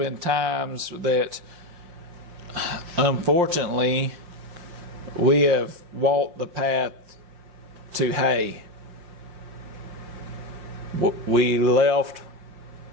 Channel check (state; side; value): late; left; 5.7 ms